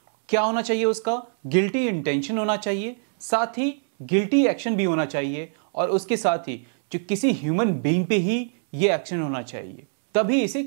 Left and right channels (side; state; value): left; silent; digital silence